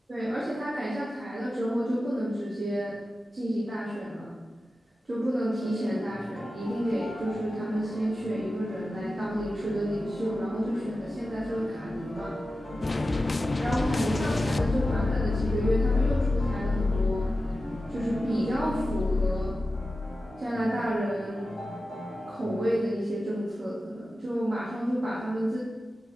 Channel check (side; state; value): both; normal; correlation 0.93